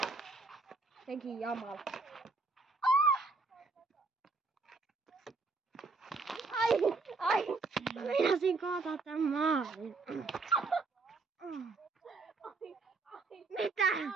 Senkin jamala. Ai! Meinasin kaataa tän maalin. Mitä?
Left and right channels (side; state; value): left; quieter; 3.9 dB